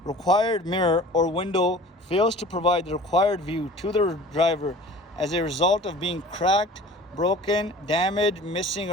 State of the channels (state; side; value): normal; both; correlation 0.44